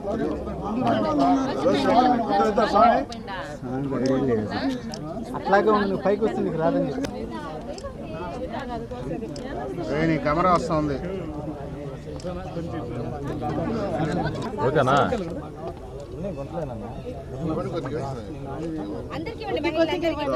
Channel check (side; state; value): both; identical; correlation 1.00